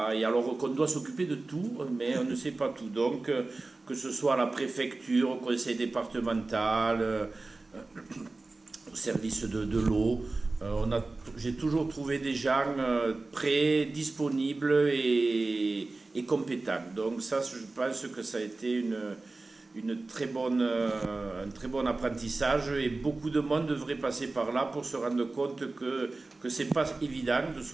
et alors qu'on doit s'occuper de tout, mais on ne sait pas tout. Donc, que ce soit à la préfecture, au conseil départemental, au service de l'eau, j'ai toujours trouvé des gens prêts, disponibles et compétents. Donc ça, je pense que ça a été un très bon apprentissage, et beaucoup de monde devrait passer par là pour se rendre compte que c'est pas évident de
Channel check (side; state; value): left; quieter; 3.3 dB